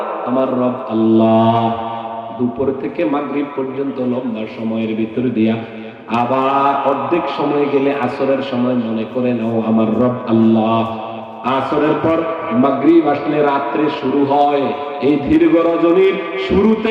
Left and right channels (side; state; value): both; identical; correlation 1.00